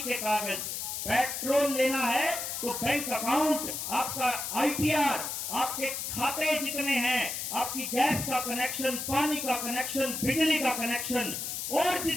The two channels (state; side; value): noise; left; hiss, 4 dB below the sound